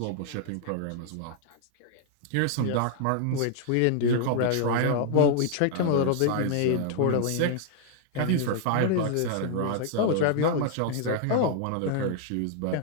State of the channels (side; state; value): both; different; correlation 0.00